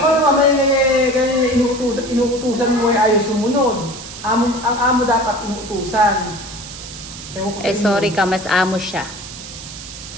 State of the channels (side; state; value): right; noise; hiss, 13 dB below the sound